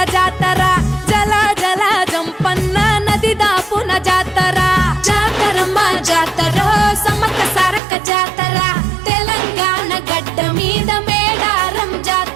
జాతర జల జల జంపన్న నది దాపున జాతర జాతరమ్మ జాతర సమ్మక్క సారక్క జాతర తెలంగాణ గడ్డ మీద మేడారం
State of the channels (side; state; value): left; drops out; at 7.8 s